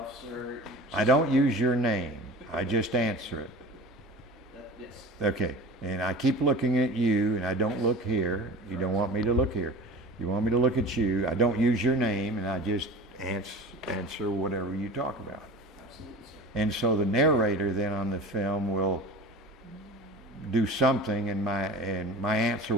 sir. I don't use your name. I just answer it. Yes. Okay. And I keep looking at you, and I don't look here. You don't want me to look here. You want me to look at you. I don't use your name, and I just answer whatever you talk about. Absolutely, sir. And so the narrator then on the film will do something, and my answer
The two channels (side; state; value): both; normal; correlation 0.36